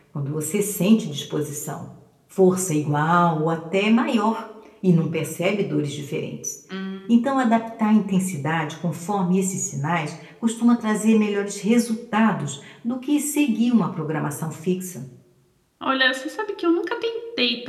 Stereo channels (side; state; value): both; identical; correlation 1.00